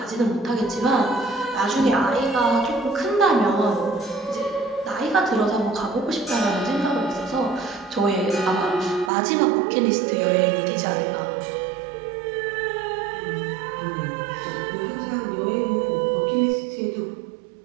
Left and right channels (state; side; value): drops out; left; at 9.1 s